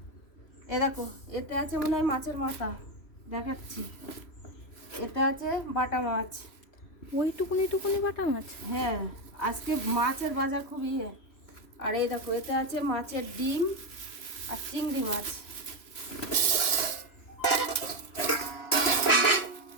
এ দেখো, এতে আছে মনে হয় মাছের মাথা, দেখাচ্ছি। এতে আছে বাটা মাছ, ওইটুকুনি টুকুনি বাটা মাছ। হ্যাঁ আজকে মাছের বাজার খুব ইয়ে। আর এই দেখো, এতে আছে মাছের ডিম আর চিংড়ি মাছ।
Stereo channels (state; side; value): late; right; 3.0 ms